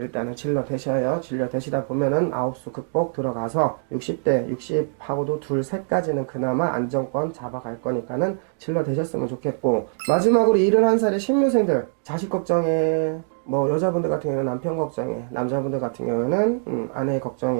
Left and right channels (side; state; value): left; silent; digital silence